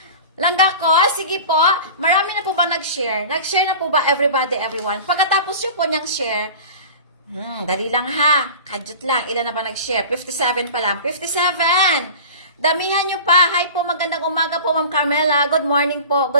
Langga ko, sige po, marami na po ba nag-share? Nag-share na po ba everybody, everyone? Pagkatapos nyo po niyang share, dali lang ha, kadyot lang. Ilan na ba nag-share? 57 pa lang. 57! Damihan nyo pa. Hi po, magandang umaga po, Ma'am Carmela. Good morning po.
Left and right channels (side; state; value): both; inverted; correlation -0.37